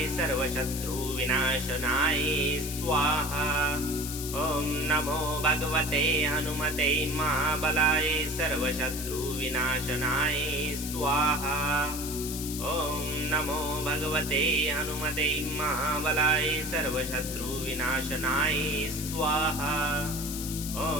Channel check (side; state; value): left; noise; hiss, 7 dB below the sound